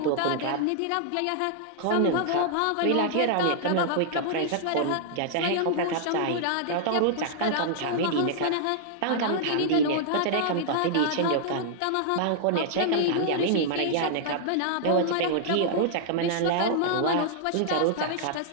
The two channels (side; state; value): both; different; correlation -0.01